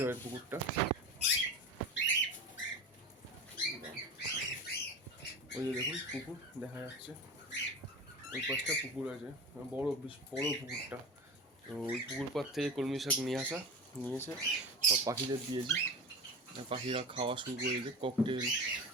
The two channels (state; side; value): normal; both; correlation 0.29